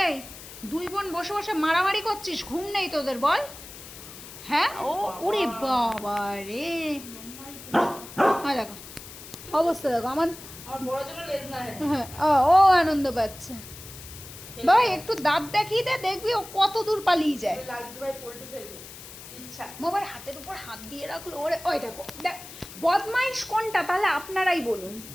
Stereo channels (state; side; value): noise; left; hiss, 15 dB below the sound